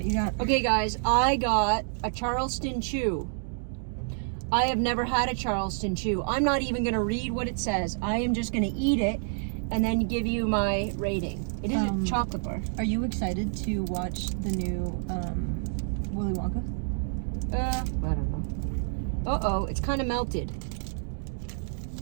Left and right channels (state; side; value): silent; left; digital silence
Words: you got. Okay, guys, I got a Charleston Chew. I have never had a Charleston Chew. I'm not even going to read what it says. I am just going to eat it and then give you my rating. It is a chocolate bar. Are you excited to watch the new Willy Wonka? I don't know. Uh-oh, it's kind of melted.